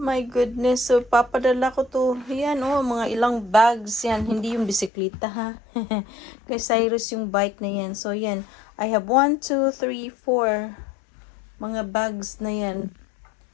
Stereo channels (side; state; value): right; drops out; at 4.9 s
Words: goodness. So, papadala ko to. Yan, oh, mga ilang bags yan. Hindi yung bisikleta, ha? Kay Cyrus yung bike na yan. So, yan. I have 1, 2, 3, 4 mga bags na yan.